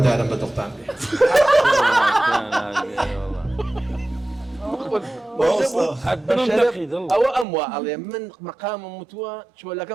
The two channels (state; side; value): drops out; left; at 7.5 s